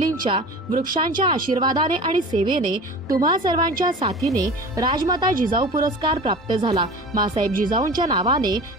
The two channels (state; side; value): normal; both; correlation 0.37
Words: वृक्षांच्या आशीर्वादाने आणि सेवेने तुम्हा सर्वांच्या साथीने राजमाता जिजाऊ पुरस्कार प्राप्त झाला। मासाहेब जिजाऊंच्या नावाने